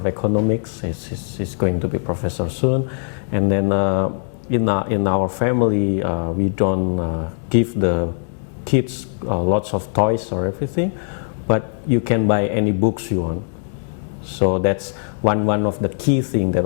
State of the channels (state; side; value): silent; right; digital silence